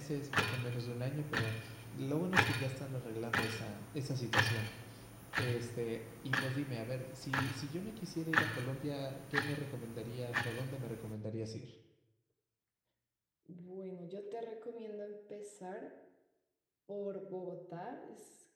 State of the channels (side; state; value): both; identical; correlation 1.00